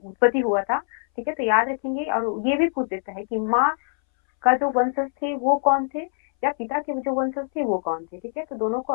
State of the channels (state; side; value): silent; right; 63 dB below the other